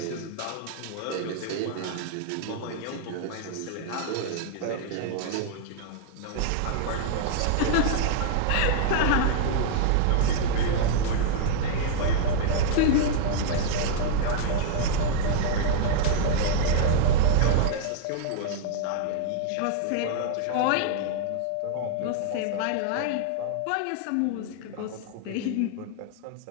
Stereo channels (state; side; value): different; both; correlation -0.01